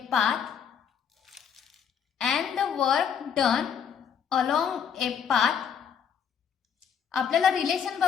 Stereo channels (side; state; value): right; quieter; 7.6 dB